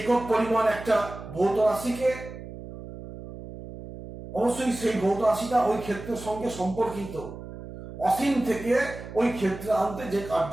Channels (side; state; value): right; noise; hum, 12 dB below the sound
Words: পরিমাণ একটা ভৌত রাশিকে, অবশ্যই সেই ভৌত রাশিটা ওই ক্ষেত্রের সঙ্গে সম্পর্কিত, অসীম থেকে ওই ক্ষেত্রে আনতে যে কার্য